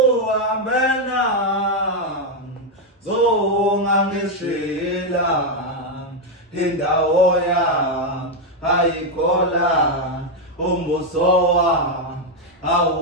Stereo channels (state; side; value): normal; both; correlation 0.03